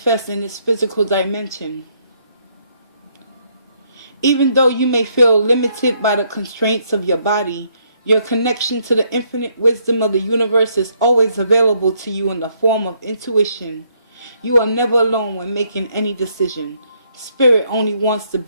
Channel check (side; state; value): both; inverted; correlation -0.71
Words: in this physical dimension. Even though you may feel limited by the constraints of your body, your connection to the infinite wisdom of the universe is always available to you in the form of intuition. You are never alone when making any decision. Spirit only wants the